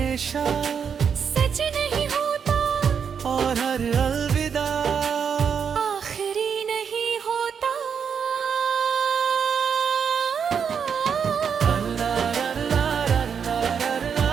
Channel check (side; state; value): left; quieter; 7.0 dB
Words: सच नहीं होता और हर अलविदा आखिरी नहीं होता।